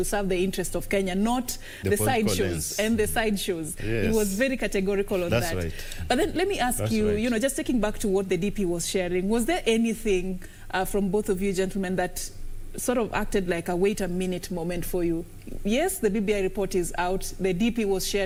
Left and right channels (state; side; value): identical; both; correlation 1.00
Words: serve the interest of Kenya, not the sideshows and the sideshows. Yes. He was very categorical on that. Right. But then let me ask you, just taking back to what the DP was sharing, was there anything from both of you gentlemen that sort of acted like a wait a minute moment for you? Yes, the BBI report is out. The DP was